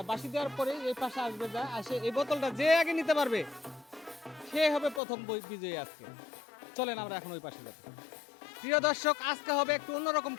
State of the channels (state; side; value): drops out; right; at 5.0 s